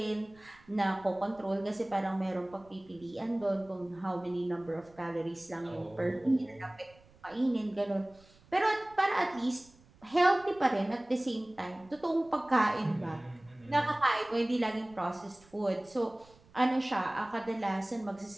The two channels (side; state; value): right; noise; rumble, 27 dB below the sound